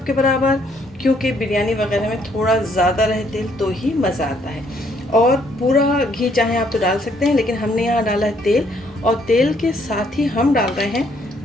के बराबर, क्योंकि बिरयानी वगैरह में थोड़ा ज़्यादा रहे तेल तो ही मज़ा आता है। और पूरा घी चाहे आप तो डाल सकते हैं, लेकिन हमने यहाँ डाला है तेल, और तेल के साथ ही हम डाल रहे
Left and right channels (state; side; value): normal; both; correlation 0.68